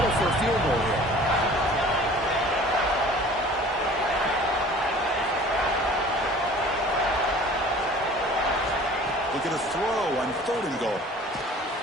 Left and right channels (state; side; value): normal; both; correlation 0.47